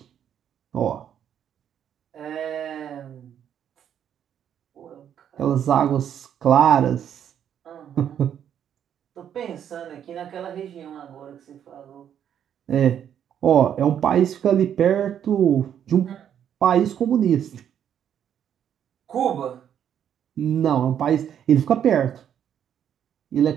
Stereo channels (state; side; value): quieter; left; 9.3 dB